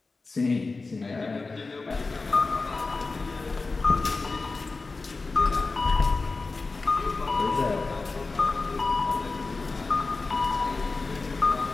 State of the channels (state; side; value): quieter; right; 3.8 dB